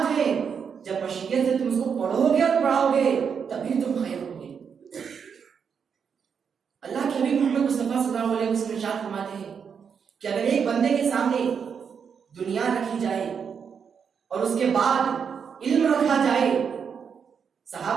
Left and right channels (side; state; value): left; quieter; 6.7 dB